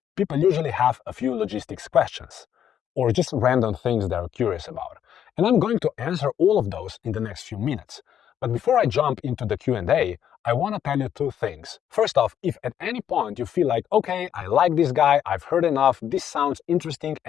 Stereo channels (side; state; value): right; quieter; 9.5 dB